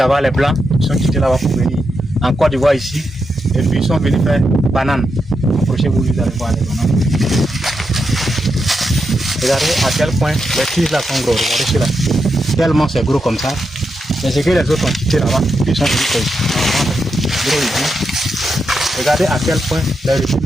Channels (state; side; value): normal; both; correlation 0.85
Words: les blancs, ils sont quittés là-bas pour venir en Côte d'Ivoire ici. Et puis ils sont venus faire banane. Approchez-vous, vous allez voir les bananes. Regardez à quel point les tiges là sont gros. Regardez celui-là. Tellement c'est gros comme ça. Mais c'est que les autres ont quitté là-bas. Ils sont venus faire ici. Regardez à quel point les régimes